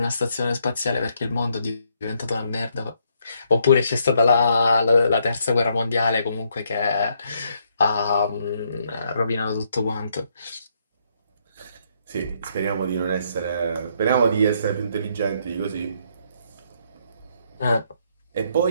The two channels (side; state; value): both; inverted; correlation -0.72